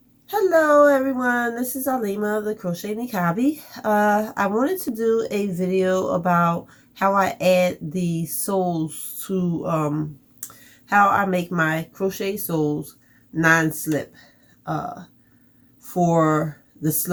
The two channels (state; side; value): identical; both; correlation 1.00